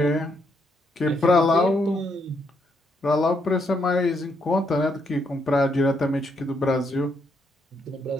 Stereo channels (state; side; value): normal; both; correlation 0.76